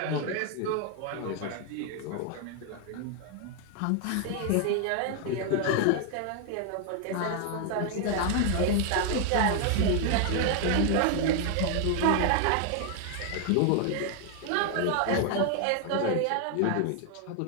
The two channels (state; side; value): different; both; correlation 0.00